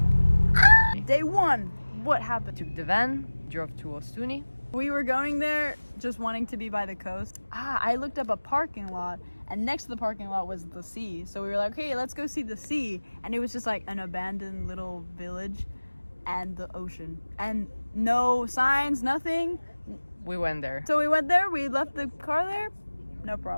Day 1. What happened? Took the van, drove to OSTUNI. We were going there just wanting to be by the coast. I looked up a parking lot, and next to the parking lot was the sea. So we were like, hey, let's go see the sea. And it was just like an abandoned little village and the ocean. And no signs, nothing. We went there. So we went there, we left the car there, no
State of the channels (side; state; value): both; inverted; correlation -1.00